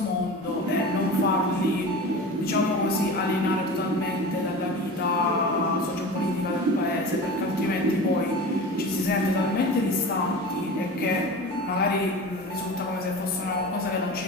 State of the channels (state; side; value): noise; right; hum, 25 dB below the sound